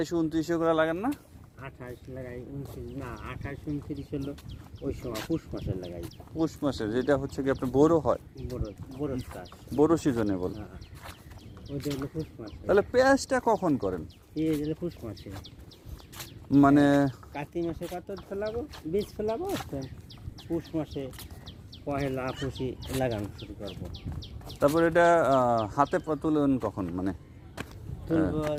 এগুলো লাগান না? 28 লাগাই, 29 না, 28-29 হলো ওই সময় পুষ মাসে লাগাই। পৌষ মাসে, যেটা হচ্ছে কি আপনার বোরো হয়, বড় বড় চাষ। বোরো সিজনে বল। হ্যাঁ, ওইটা হলো পুষ মাসে। তাহলে পেঁয়াজটা কখন করেন? এই হলো পুষ মাসে, মানে কার্তিক মাসে কত ফেলাবো, বীজ ফেলাবো, তো পুষ মাসে পহেলা পুষি লাগানো শুরু করবো। তারপর এটা হাতে তুলেন কখন, মানে তুলবো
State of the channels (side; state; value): both; identical; correlation 1.00